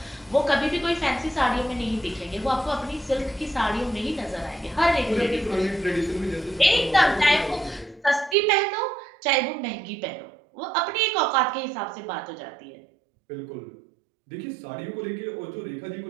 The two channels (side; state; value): left; drops out; at 8.3 s